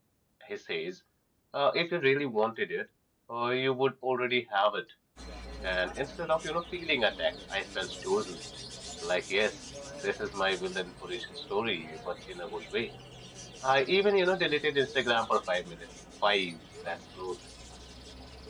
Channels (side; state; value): both; identical; correlation 1.00